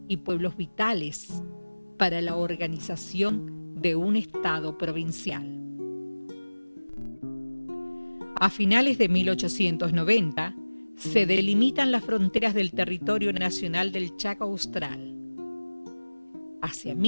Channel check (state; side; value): inverted; both; correlation -1.00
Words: y pueblos vitales para la organización de un Estado provincial. A finales de 1890 se delimitan las fronteras del territorio nacional del Chaco Austral. Hacia